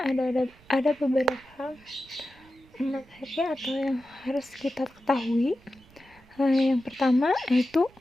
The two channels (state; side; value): noise; right; rumble, 27 dB below the sound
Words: beberapa materi atau yang harus kita ketahui. Yang pertama yaitu